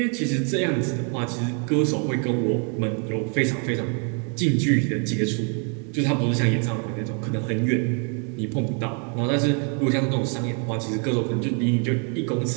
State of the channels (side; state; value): left; quieter; 39.3 dB